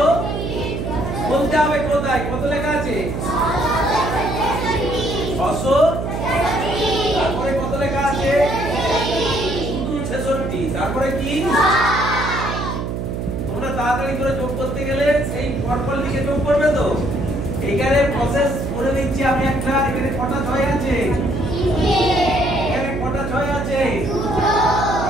বলতে হবে কোথায় কত লেখা আছে? 600। তারপরে কত লেখা আছে? 66। তারপরে কি? তোমরা তাড়াতাড়ি করে যোগ করতে গেলে সেই পরপর লিখে যোগ করবে তো। এইখানে প্রসেস করে দিচ্ছি আমি একটা। এখানে কটা 6 আছে? এখানে কটা 6 আছে?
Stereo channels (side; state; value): right; noise; hum, 3 dB below the sound